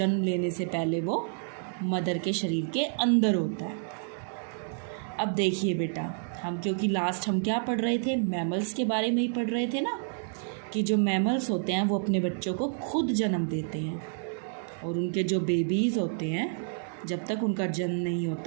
लेने से पहले वो मदर के शरीर के अंदर होता है। अब देखिए बेटा, क्योंकि लास्ट हम क्या पढ़ रहे थे, मैमल्स के बारे में ही पढ़ रहे थे ना, कि जो मैमल्स होते हैं वो अपने बच्चों को खुद जन्म देते हैं और उनके जो बेबीज़ होते हैं जब तक उनका जन्म नहीं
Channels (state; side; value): silent; left; digital silence